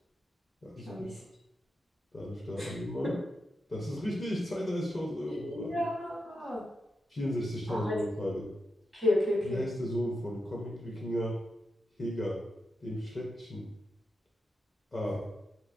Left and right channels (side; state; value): both; normal; correlation 0.87